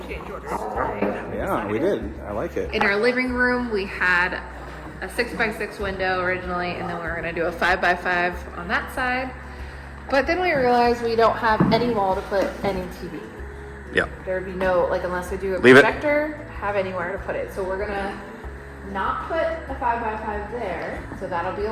change orders today. Yeah, we did. I like it. In our living room, we had a 6x6 window originally, and then we were gonna do a 5x5 on that side. But then we realized we don't have any wall to put any TV. Yeah. There'd be no, like, unless we do a Leave it. projector, have anywhere to put it. So we're gonna not put a 5x5 there. So that'll be a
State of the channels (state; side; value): identical; both; correlation 1.00